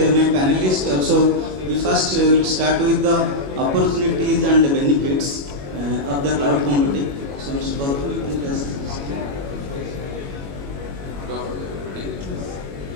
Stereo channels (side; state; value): left; late; 21 ms